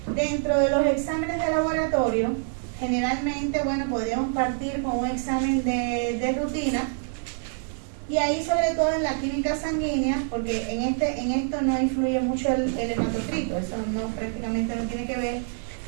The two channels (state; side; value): silent; left; digital silence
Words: dentro de los exámenes de laboratorio, generalmente, bueno, podríamos partir con un examen de rutina, y ahí sobre todo en la química sanguínea, porque en esto no influye mucho el hematocrito, eso prácticamente no tiene que ver,